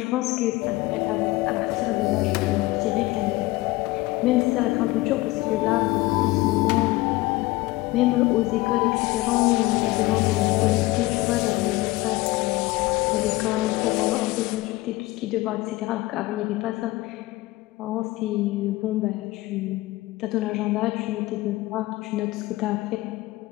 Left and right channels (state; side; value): quieter; right; 19.5 dB